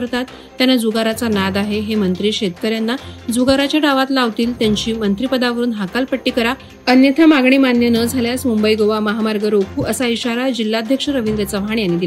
त्यांना जुगाराचा नाद आहे, हे मंत्री शेतकऱ्यांना जुगाराच्या डावात लावतील, त्यांची मंत्रिपदावरून हकालपट्टी करा, अन्यथा मागणी मान्य न झाल्यास मुंबई गोवा महामार्ग रोखू, असा इशारा जिल्हाध्यक्ष रवींद्र चव्हाण यांनी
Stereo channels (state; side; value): identical; both; correlation 1.00